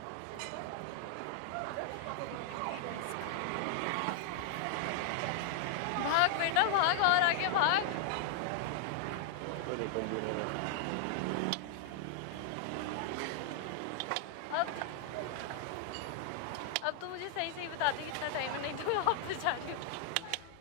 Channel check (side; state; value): both; different; correlation -0.01